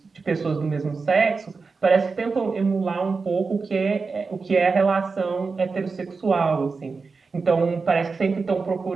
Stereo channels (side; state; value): left; quieter; 4.5 dB